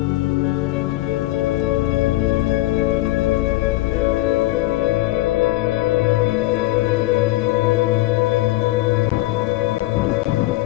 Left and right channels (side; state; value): right; quieter; 18.2 dB